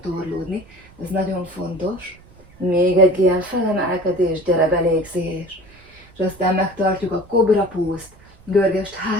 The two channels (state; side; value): noise; right; rumble, 26 dB below the sound